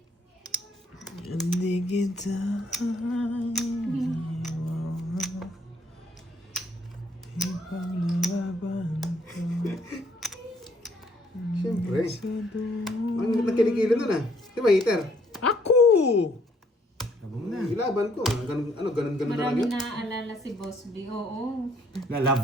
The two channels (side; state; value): both; normal; correlation 0.66